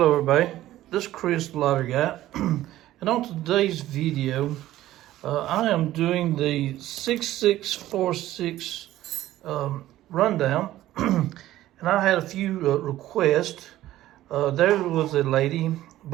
everybody, this is Chris the Lottery Guy, and on today's video, I am doing the 6646 rundown, and I had a few requests. There was a lady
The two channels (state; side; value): quieter; left; 14.5 dB